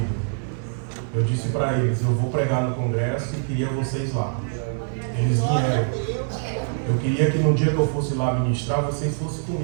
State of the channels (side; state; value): left; silent; 63 dB below the other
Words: Eu disse para eles: eu vou pregar no congresso e queria vocês lá. Eles vieram. Eu queria que no dia que eu fosse lá ministrar, vocês fossem